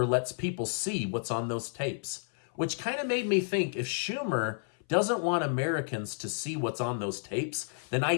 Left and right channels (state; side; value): silent; right; 57 dB below the other